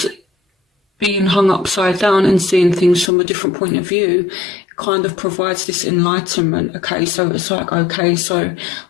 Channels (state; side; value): drops out; right; at 3.1 s